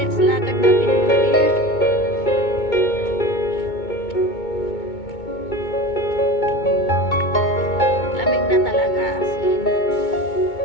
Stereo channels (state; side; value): late; right; 2.2 ms